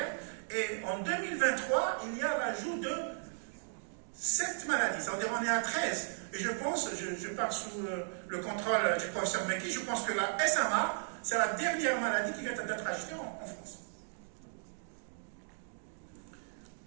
Et en 2023, il y a l'ajout de 7 maladies, c'est-à-dire on est à 13. Et je pense, je pars sous le contrôle du professeur Meki, je pense que la SMA, c'est la dernière maladie qui vient d'être ajoutée en France.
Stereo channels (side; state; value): left; silent; digital silence